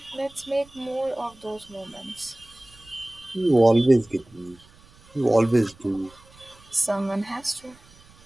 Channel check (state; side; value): noise; right; rumble, 26 dB below the sound